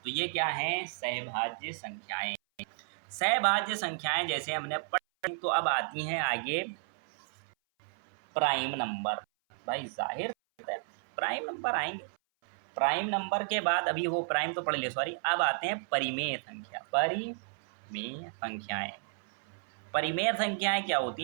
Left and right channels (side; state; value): left; silent; 56 dB below the other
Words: तो ये क्या है? सहभाज्य संख्याएं। सहभाज्य संख्याएं जैसे हमने पढ़ी, तो अब आती हैं आगे प्राइम नंबर। भाई जाहिर है प्राइम नंबर आएंगे। प्राइम नंबर के बाद, अभी वो प्राइम तो पढ़ लिया, सॉरी, अब आते हैं परिमेय संख्या। परिमेय संख्याएं, परिमेय संख्याएं क्या होती